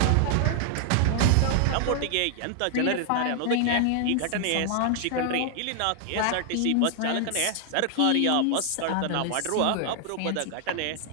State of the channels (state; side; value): different; both; correlation 0.00